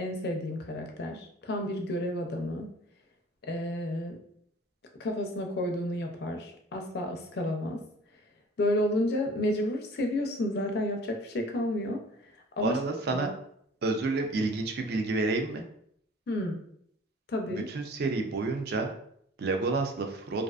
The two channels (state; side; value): normal; both; correlation 0.48